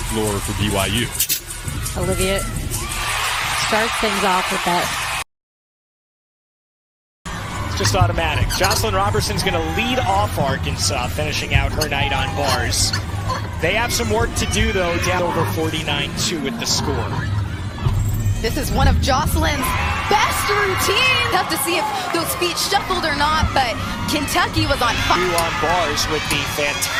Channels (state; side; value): identical; both; correlation 1.00